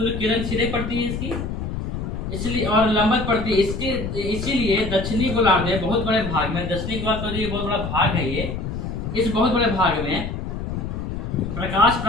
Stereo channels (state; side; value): noise; left; rumble, 5 dB below the sound